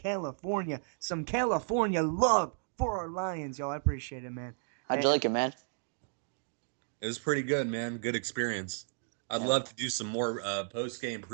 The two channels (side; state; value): left; silent; digital silence